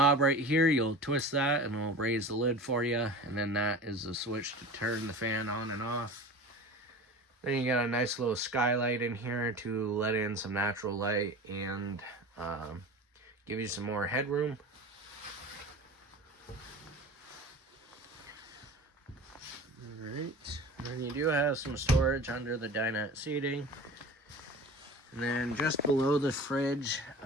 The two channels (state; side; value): normal; both; correlation 0.35